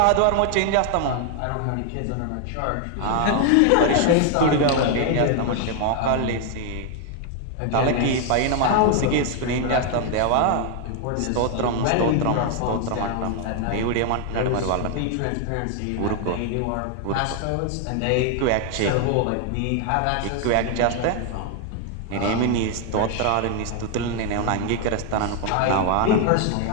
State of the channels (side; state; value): both; different; correlation 0.00